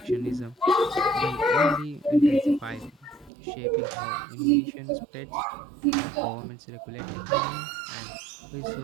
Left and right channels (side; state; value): left; drops out; at 3.3 s